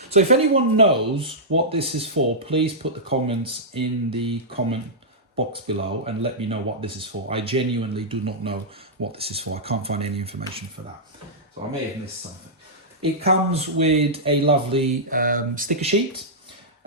So if anyone knows what this is for, please put the comments in the comment box below and let me know what this is for. I genuinely do not know what this is for. I can't find any information for that. So I may have missed something. It comes with a lovely sticker sheet.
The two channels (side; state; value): both; normal; correlation -0.12